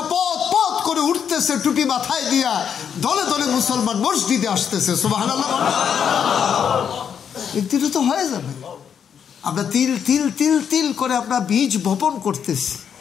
পথ পথ করে উঠতেছে, টুপি মাথায় দিয়া দলে দলে মুসলমান মসজিদে আসতেছে। সুবহানাল্লাহ। একদিন তো হয়ে যাবে। আমরা তিল তিল তিল তিল করে আমরা বীজ বপন করতেছি,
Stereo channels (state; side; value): quieter; right; 7.8 dB